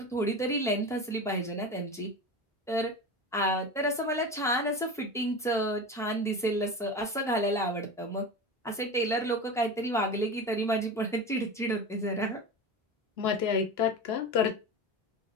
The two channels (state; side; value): normal; both; correlation 0.28